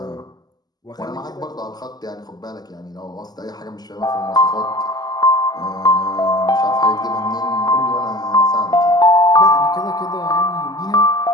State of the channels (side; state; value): right; late; 0.20 ms